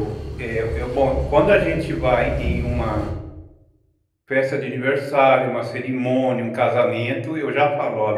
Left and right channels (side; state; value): both; identical; correlation 1.00